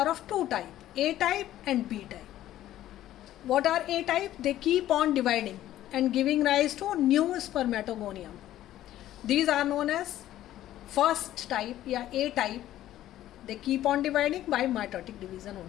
of 2 types, A type and B type. What are A type? They keep on dividing and giving rise to new spermatogonium. These are known as first type, A type. They keep on dividing by mitotic division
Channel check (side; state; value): right; quieter; 13.3 dB